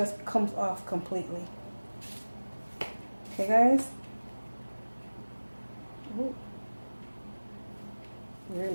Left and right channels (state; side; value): inverted; both; correlation -1.00